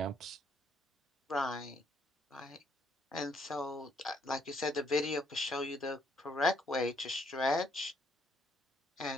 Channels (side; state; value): both; normal; correlation 0.70